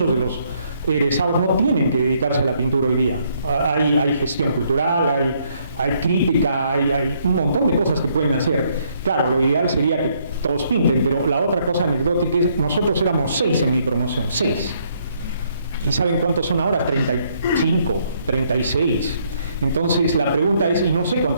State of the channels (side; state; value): both; inverted; correlation -0.70